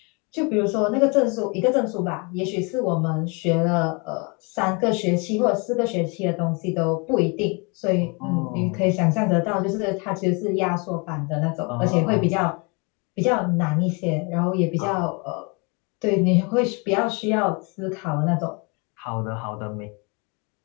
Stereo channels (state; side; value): quieter; right; 31.5 dB